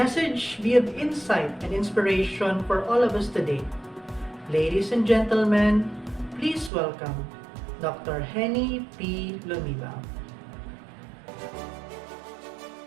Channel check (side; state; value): left; drops out; at 6.7 s